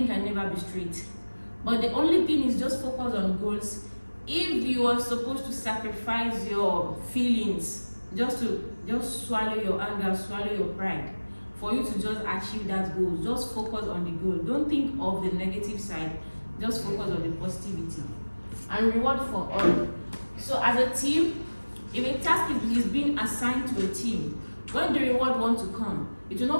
can never be straight. But the only thing is just focus on goals. If you are supposed to sacrifice your feelings, just swallow your anger, swallow your pride, for you to just achieve that goal, just focus on the goal. Don't think of the negative side, just focus on the positivity. And reward for all. So as a team, if a task is being assigned to a team, when the reward wants to come, it will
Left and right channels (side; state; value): both; inverted; correlation -1.00